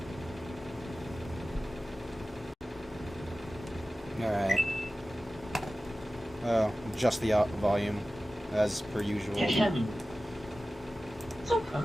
Alright. Oh, just the volume, as per usual. Super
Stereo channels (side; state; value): both; normal; correlation 0.95